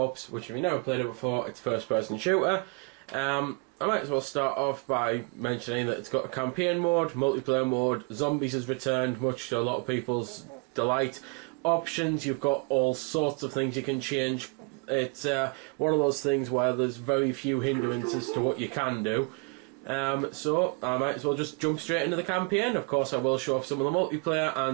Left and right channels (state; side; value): quieter; left; 32.8 dB